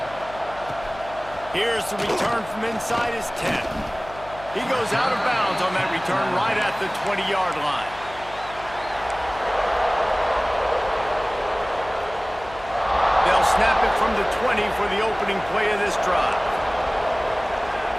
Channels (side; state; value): left; noise; hum, 18 dB below the sound